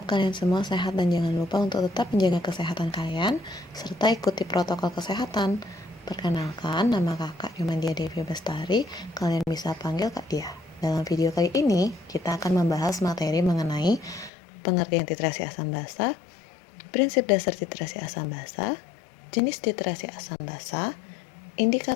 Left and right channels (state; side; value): drops out; right; at 14.3 s